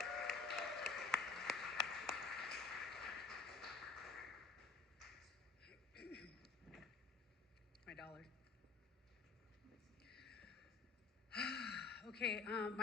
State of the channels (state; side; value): quieter; right; 4.5 dB